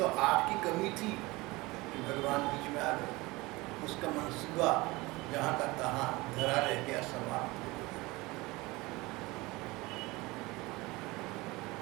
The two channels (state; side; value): quieter; left; 22.3 dB